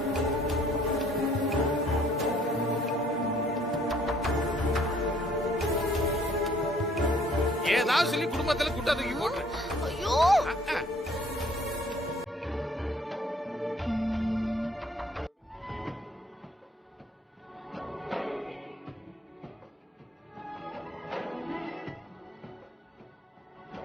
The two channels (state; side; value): normal; both; correlation 0.60